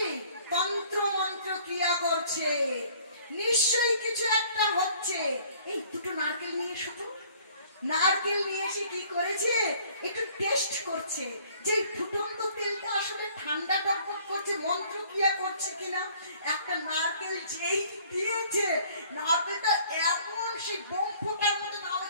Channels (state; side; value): inverted; both; correlation -0.55